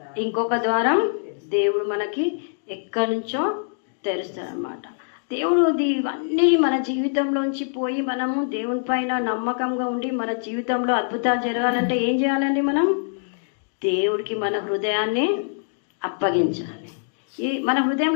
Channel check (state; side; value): silent; right; digital silence